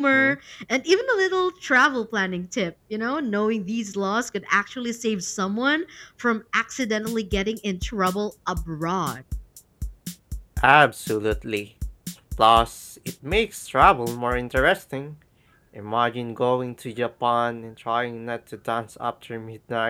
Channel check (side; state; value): both; identical; correlation 1.00